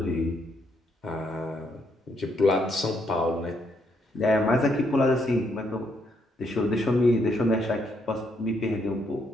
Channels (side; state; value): both; normal; correlation 0.74